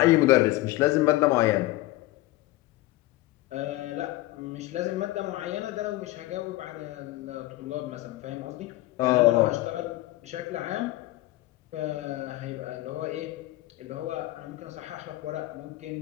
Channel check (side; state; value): right; quieter; 17.5 dB